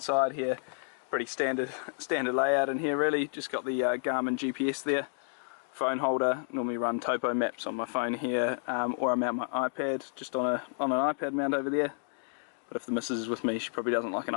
here, pretty standard layout in here really. Just got the Garmin GPS there. Phone holder, normally run topo maps on my phone here, or I mount my iPad just on an iPad mount over there. But if the missus is with me, she probably doesn't like an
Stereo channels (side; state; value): right; silent; 57 dB below the other